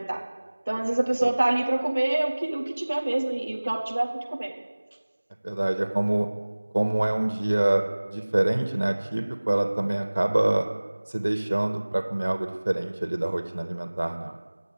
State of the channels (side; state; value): both; inverted; correlation -1.00